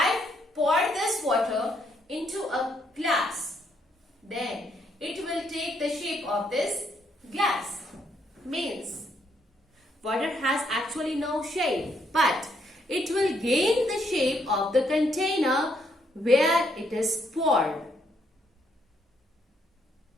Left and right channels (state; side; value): normal; both; correlation 0.73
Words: pour this water into a glass, then it will take the shape of this glass. Means water has actually no shape, but it will gain the shape of the container where it is poured.